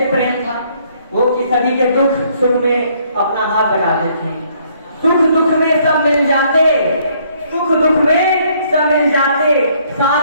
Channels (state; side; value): inverted; both; correlation -0.66